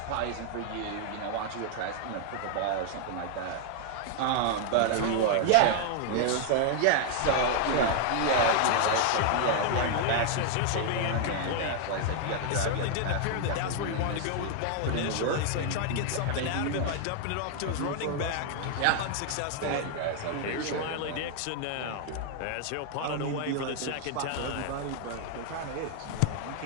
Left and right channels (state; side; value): different; both; correlation 0.00